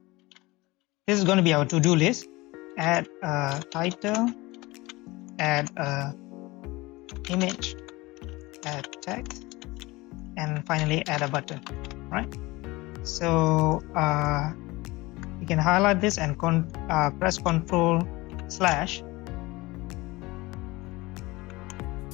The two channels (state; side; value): quieter; right; 21.7 dB